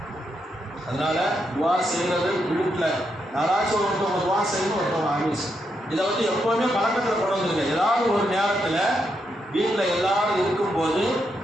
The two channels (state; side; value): normal; both; correlation 0.81